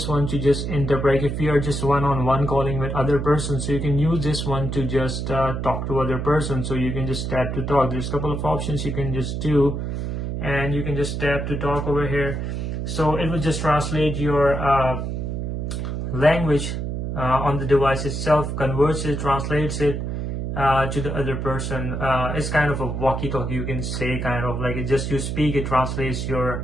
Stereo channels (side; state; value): right; noise; hum, 3 dB below the sound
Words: one to just interpret if you are just one-on-one calling with other person. So you can use this one to just talk to other person. So you can just tap to talk. There's a couple of options you can just do, and you can just tap to talk over here. So it will just translate your language on the device itself, converts it, translates it to the other person. It's kind of a walkie-talkie, you can say, kind of like it just you speak, it translates